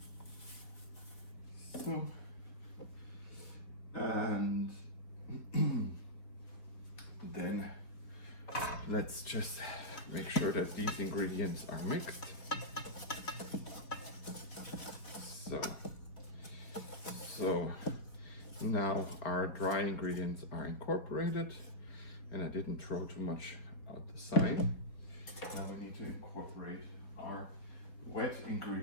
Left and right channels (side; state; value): right; late; 4.3 ms